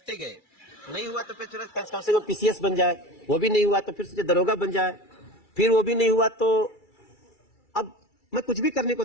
गए, नहीं हुआ तो फिर कम से कम पीसीएस बन जाए, वो भी नहीं हुआ तो फिर सोचे दरोगा बन जाए, फिर वो भी नहीं हुआ तो अब मैं कुछ भी करने को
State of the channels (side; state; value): right; late; 2.3 ms